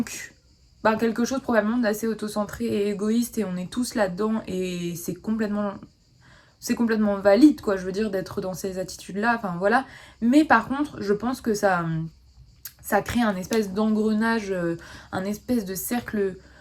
bah, quelque chose probablement d'assez autocentré et égoïste, et on est tous là-dedans, et c'est complètement valide, quoi, je veux dire, d'être dans ces attitudes-là, enfin voilà. Mais par contre, je pense que ça crée un espèce d'engrenage, un espèce de cercle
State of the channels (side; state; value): both; identical; correlation 1.00